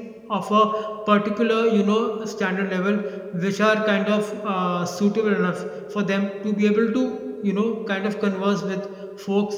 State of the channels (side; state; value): both; identical; correlation 1.00